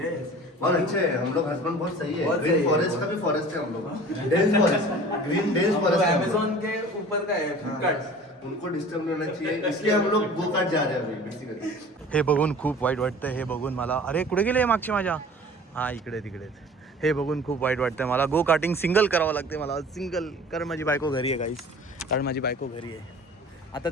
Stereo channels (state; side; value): normal; both; correlation 0.44